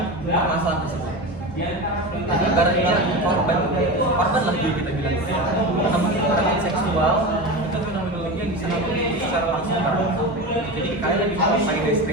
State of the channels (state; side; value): normal; both; correlation 0.25